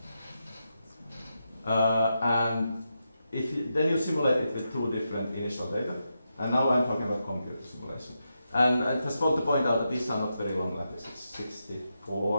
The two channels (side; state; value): both; inverted; correlation -0.86